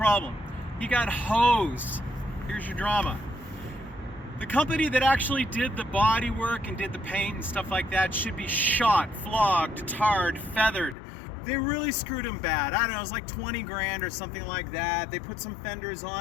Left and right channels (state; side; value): drops out; right; at 11.0 s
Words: He got hosed. Here's your drama. The company that actually did the body work and did the paint and stuff like that should be shot, flogged, tarred, feathered. They really screwed him bad. I don't know, it was like 20 grand or something like that. They put some fenders